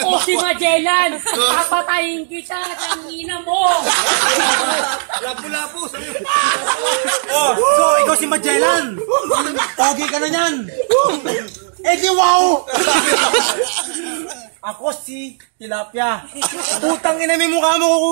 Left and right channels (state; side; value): silent; left; digital silence